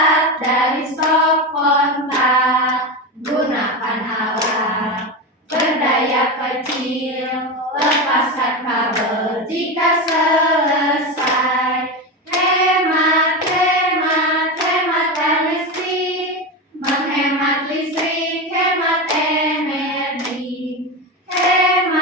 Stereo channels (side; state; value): both; normal; correlation 0.18